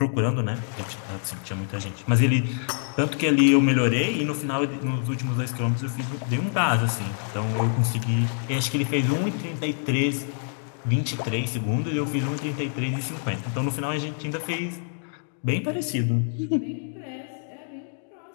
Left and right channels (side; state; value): right; silent; digital silence